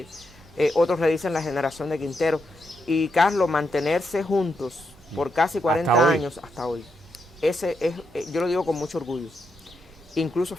otros le dicen la generación de Quintero. Y Carlos, mantenerse juntos por casi 40 años hasta hoy, ese es, yo lo digo con mucho orgullo. Incluso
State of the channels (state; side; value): normal; both; correlation 0.82